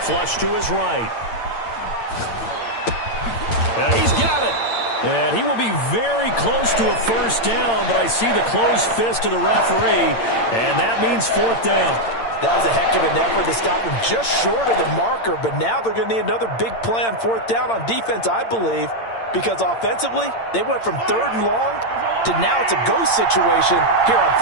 Flush to his right. And he's got it. And he will be very close to a 1st down, but I see the closed fist of the referee, and that means 4th down. That was a heck of an effort to stop him just short of the marker, but now they're going to need another big play on 4th down on defense, I believe, because offensively, they went from 3rd and long to now it's a go situation here on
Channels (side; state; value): right; late; 8.8 ms